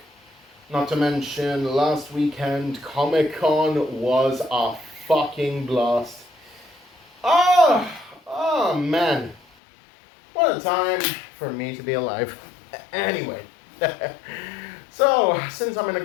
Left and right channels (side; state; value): right; drops out; at 9.4 s